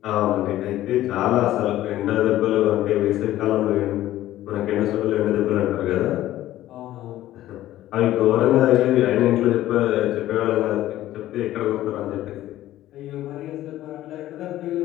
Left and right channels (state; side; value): quieter; right; 14.2 dB